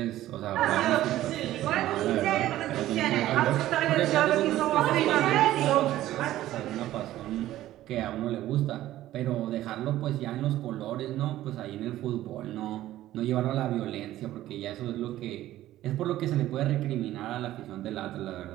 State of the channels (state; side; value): quieter; left; 14.3 dB